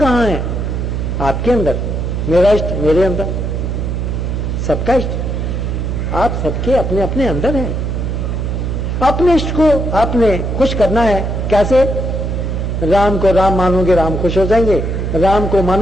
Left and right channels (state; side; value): noise; right; hum, 2 dB below the sound